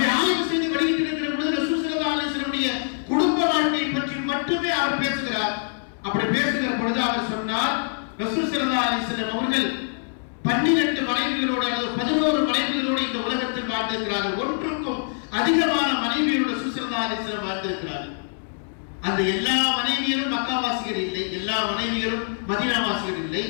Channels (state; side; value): silent; right; 62 dB below the other